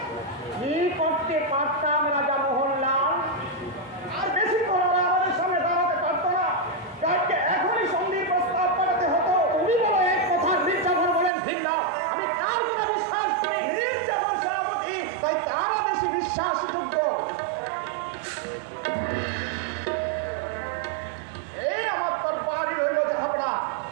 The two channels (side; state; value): left; drops out; at 11.3 s